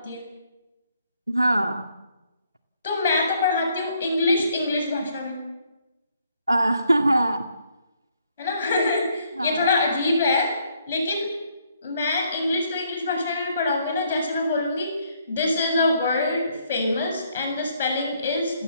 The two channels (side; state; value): both; inverted; correlation -0.70